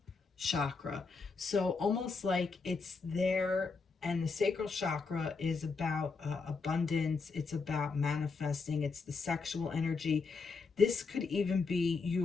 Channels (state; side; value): quieter; right; 4.5 dB